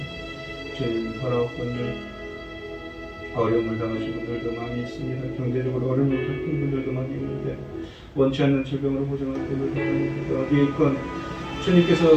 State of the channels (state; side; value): identical; both; correlation 1.00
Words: 주님 바라옵건대 어려움을 당하신 분들도 많이 있습니다. 경제적으로 어려움을 겪은 분들도 많이 있는데 원치 않는 질병으로 고생하는 분들도 많이 있는데 어디에 있건 주님께서